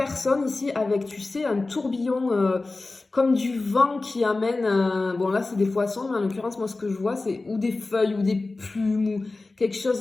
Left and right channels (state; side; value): quieter; right; 3.4 dB